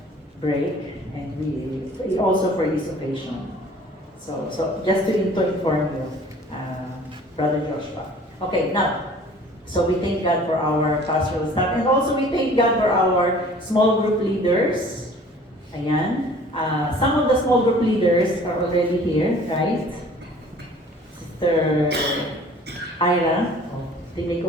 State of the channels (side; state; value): both; normal; correlation 0.50